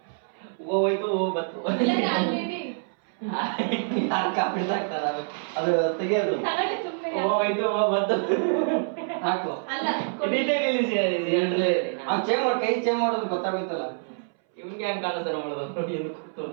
ಹೋಯ್ತು ಬತ್ತು ಬಿಡ್ಸಾಕ್ತಾರ, ಅದು ತೆಗಿಯೋದು. ಹೋಯ್ತು ಬತ್ತು ಹಾಕು. ಚೇಂಜ್ ಮಾಡಿ, ಕೈ ಚೇಂಜ್ ಮಾಡೋದು ಗೊತ್ತಾಗುತ್ತಲ್ಲ. ಇವ್ನಿಗೆ ಹೆಂಗ್ ಕಾಣಿಸ್ತಾರ ಮಾಡೋದು,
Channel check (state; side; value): silent; left; 61 dB below the other